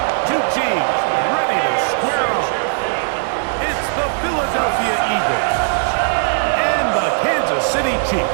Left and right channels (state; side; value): silent; left; digital silence